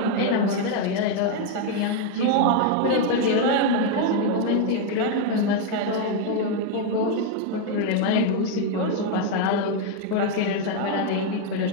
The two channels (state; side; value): different; both; correlation 0.01